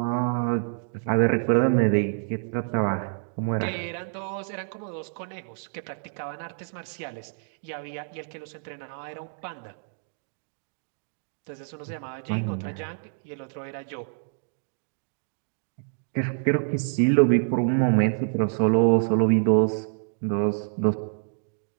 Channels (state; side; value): silent; left; digital silence